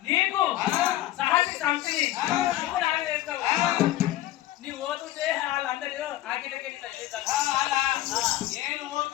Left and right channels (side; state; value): right; quieter; 15.0 dB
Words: నీకు సాటి సంతిని నీ ఓతుంటే వాళ్ళందరూ ఆగిలకి నేను